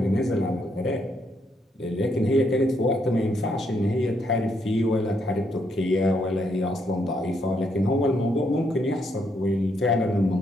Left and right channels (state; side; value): normal; both; correlation 0.75